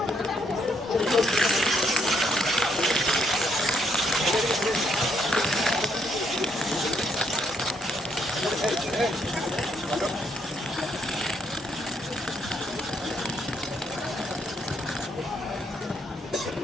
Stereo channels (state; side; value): normal; both; correlation 0.73